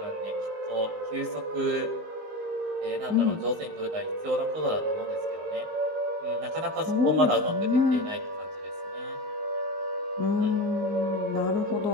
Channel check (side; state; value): left; late; 19 ms